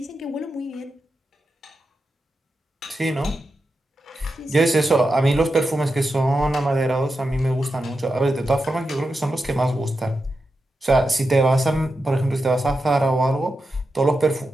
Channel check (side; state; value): both; normal; correlation 0.89